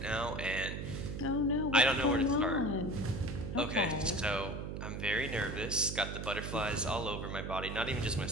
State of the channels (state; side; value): noise; right; hum, 5 dB below the sound